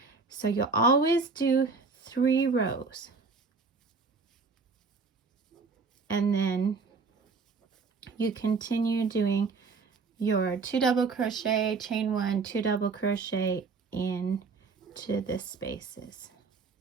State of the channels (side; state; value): left; quieter; 4.6 dB